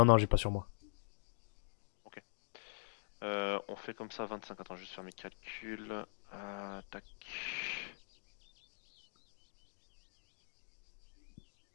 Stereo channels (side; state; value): right; silent; digital silence